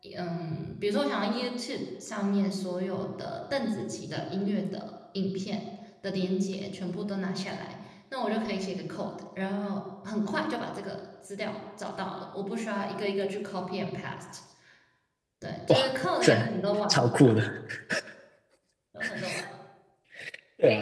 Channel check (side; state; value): both; identical; correlation 1.00